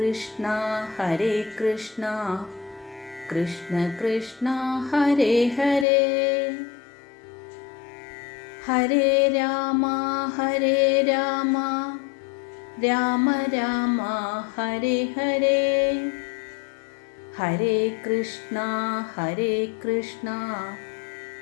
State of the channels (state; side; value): drops out; right; at 5.9 s